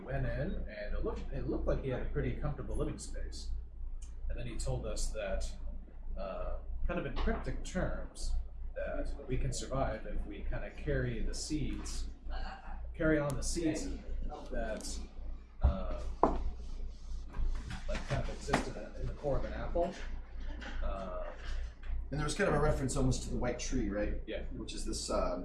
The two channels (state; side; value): identical; both; correlation 1.00